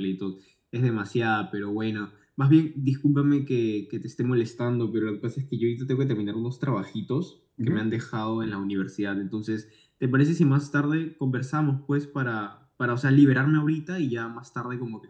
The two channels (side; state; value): both; identical; correlation 1.00